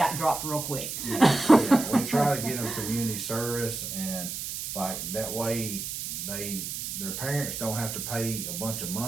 dropped real quick. Yeah. We try to get them community service, and like that way their parents don't have to pay a bunch of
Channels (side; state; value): right; noise; hiss, 5 dB below the sound